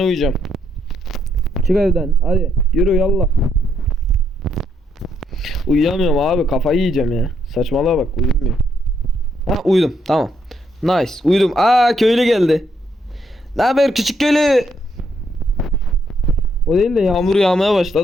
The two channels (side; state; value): both; normal; correlation 0.75